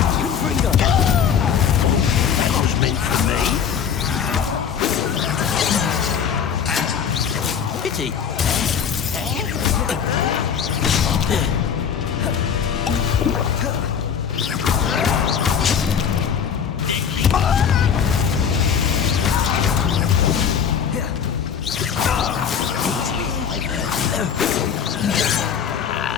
That was meant for me. Pity.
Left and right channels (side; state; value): right; quieter; 7.5 dB